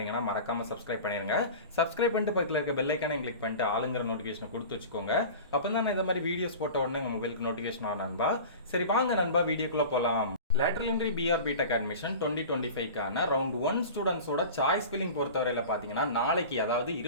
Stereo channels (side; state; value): both; inverted; correlation -0.35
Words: மறக்காமல் சப்ஸ்கிரைப் பண்ணிடுங்க. சப்ஸ்கிரைப் பண்ணிட்டு பக்கத்தில் இருக்க பெல் ஐக்கானை கிளிக் பண்ணிட்டு ஆளுங்கிற நோட்டிஃபிகேஷனை கொடுத்து வச்சுக்கோங்க. அப்போ தான் நான் இந்த மாதிரி வீடியோஸ் போட்ட உடனே உங்களுக்கு நோட்டிஃபிகேஷன் ஆகும் நண்பா. சரி வாங்க நண்பா வீடியோக்குள்ள போலாம். Lateral entry PR BTech admission 2025க்கான ரவுண்ட் 1 ஸ்டூடெண்ட்ஸோட சாய்ஸ் ஃபில்லிங் பொறுத்தவரையில் பார்த்தீங்கன்னா நாளைக்கு, அதாவது